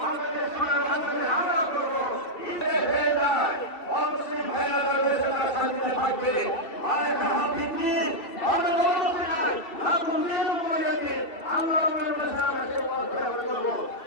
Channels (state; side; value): late; right; 2.7 ms